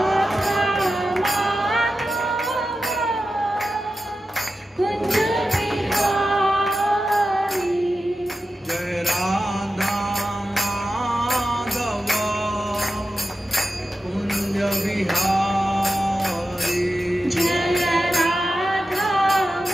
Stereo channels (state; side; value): normal; both; correlation 0.91